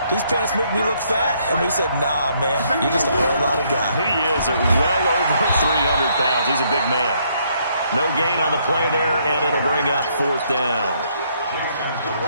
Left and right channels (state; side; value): inverted; both; correlation -0.69